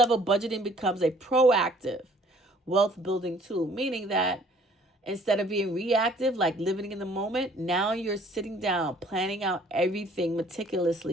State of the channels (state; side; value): normal; both; correlation 0.57